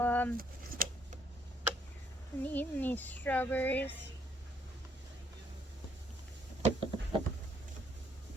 I'm eating these strawberries,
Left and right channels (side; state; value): both; normal; correlation 0.69